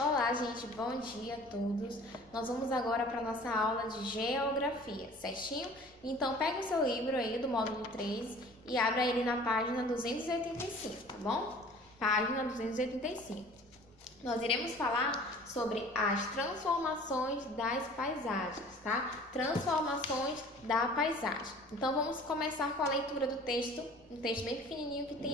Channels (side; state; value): both; normal; correlation 0.47